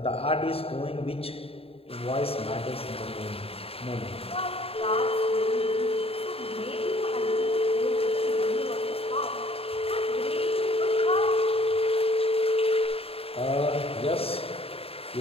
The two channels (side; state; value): right; late; 0.28 ms